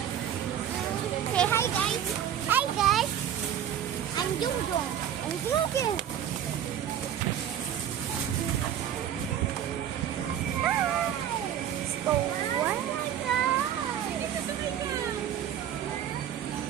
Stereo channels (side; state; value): left; quieter; 10.0 dB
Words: Say hi guys. Hi guys. I'm Jungjung. I'm vlogging. Let's go. Oh my God.